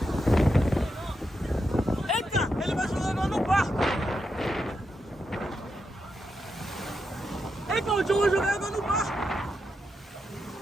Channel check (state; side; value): normal; both; correlation 0.85